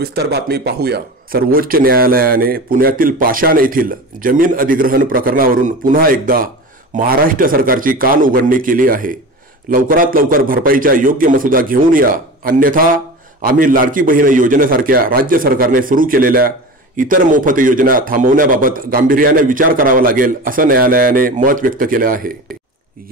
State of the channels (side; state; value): both; normal; correlation 0.31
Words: बातमी पाहूया। सर्वोच्च न्यायालयाने पुण्यातील पाषाण येथील जमीन अधिग्रहण प्रकरणावरून पुन्हा एकदा महाराष्ट्र सरकारची कान उघडणी केली आहे। लवकरात लवकर भरपाईचा योग्य मसुदा घेऊन या, अन्यथा आम्ही लाडकी बहीण योजनेसारख्या राज्य सरकारने सुरू केलेल्या इतर मोफत योजना थांबवण्याबाबत गांभीर्याने विचार करावा लागेल, असं न्यायालयाने मत व्यक्त केले आहे।